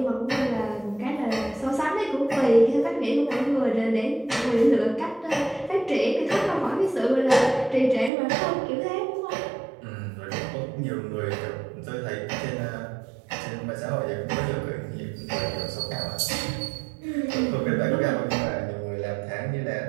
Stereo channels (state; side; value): drops out; left; at 8.1 s